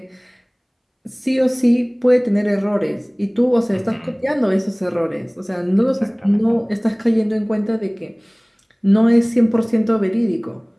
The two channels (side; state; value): both; identical; correlation 1.00